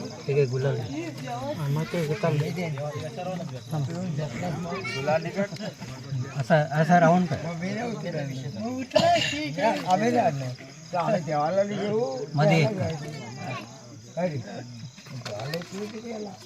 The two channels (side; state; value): both; identical; correlation 1.00